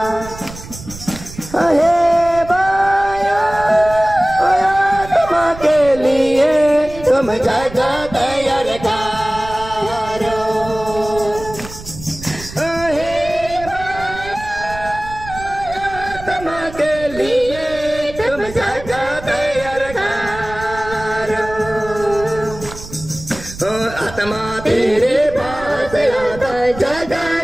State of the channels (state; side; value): noise; right; rumble, 14 dB below the sound